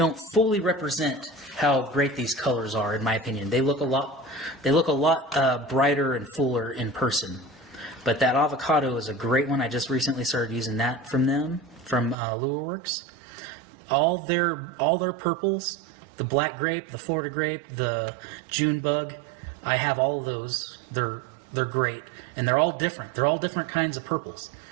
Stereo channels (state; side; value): drops out; left; at 12.2 s